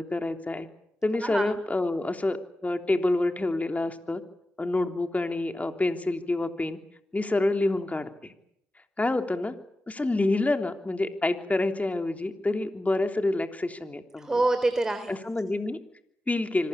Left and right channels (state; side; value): normal; both; correlation 0.93